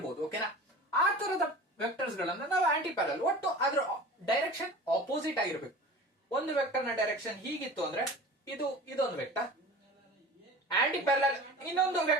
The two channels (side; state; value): both; normal; correlation 0.38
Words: ಓಕೆನಾ? ಆ ತರದ ವೆಕ್ಟರ್ಸ್ ಗಳನ್ನ ನಾವು ಆಂಟಿ ಪ್ಯಾರಲಲ್, ಒಟ್ಟು ಅದ್ರ ಡೈರೆಕ್ಷನ್ ಆಪೋಸಿಟ್ ಆಗಿರ್ಬೇಕು. ಒಂದು ವೆಕ್ಟರ್ ನ ಡೈರೆಕ್ಷನ್ ಹೀಗಿತ್ತು ಅಂದ್ರೆ ಇದೊಂದು ವೆಕ್ಟರ್, ಆಂಟಿ ಪ್ಯಾರಲಲ್ ಇನ್ನೊಂದು